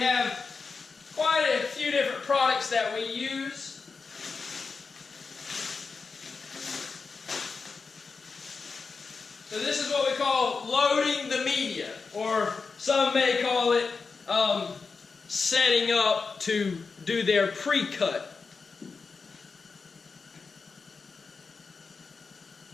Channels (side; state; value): right; quieter; 4.7 dB